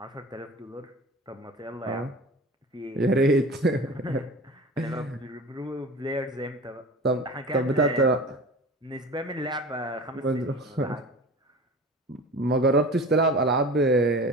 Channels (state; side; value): normal; both; correlation 0.36